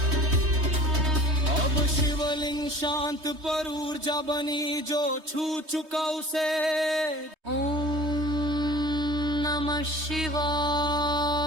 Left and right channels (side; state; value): left; late; 3.2 ms